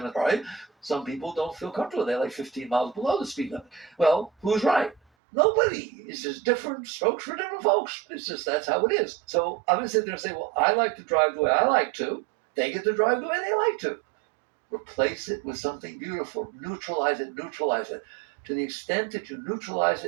right? Some people don't feel comfortable. They like 15 miles below the speed limit. Well, who's right? Nobody. It's just different strokes for different folks. It's just that's how it is. So I'm going to sit there and say, well, I like to drive the way I like to. They get to drive the way they like to. Replace it with something beautiful. Neutralize it. To the extent that you neutralize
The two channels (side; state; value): left; drops out; at 5.0 s